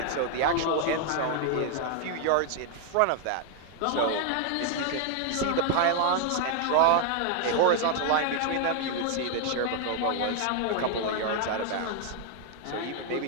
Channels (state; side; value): different; both; correlation 0.00